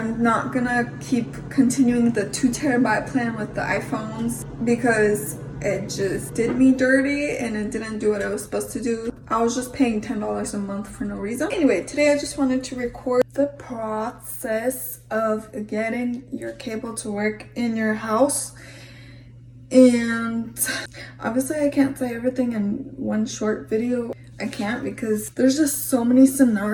not gonna keep continuing the 2 TB plan with the iPhones because it just did me dirty and it didn't do what I was supposed to do. I was just paying $10 a month for no reason. Anyway, today I just wanted to record the process of getting your cable to work in your house. And obviously I can't say everything in one short video. I can't because there's just so many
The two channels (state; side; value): identical; both; correlation 1.00